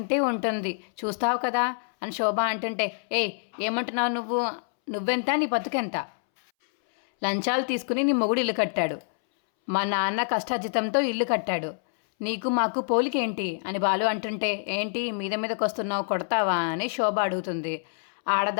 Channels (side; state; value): right; silent; 61 dB below the other